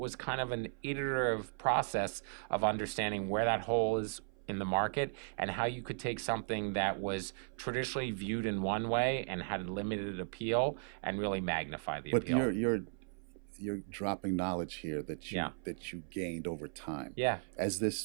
was kind of an iterative process of understanding where that hole is in the market and how you could take something that was traditionally viewed in one way and had limited appeal and really magnify the appeal. But you're dropping knowledge here that you gained over time. Yeah. As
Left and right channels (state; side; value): silent; left; 54 dB below the other